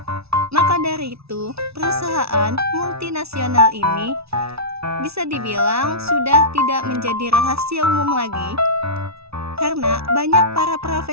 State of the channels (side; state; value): left; late; 0.78 ms